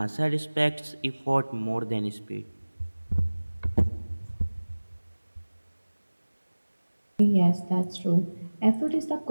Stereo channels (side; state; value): both; inverted; correlation -1.00